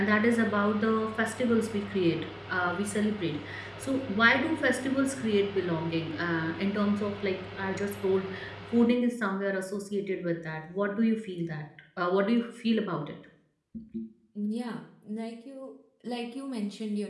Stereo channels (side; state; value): both; identical; correlation 1.00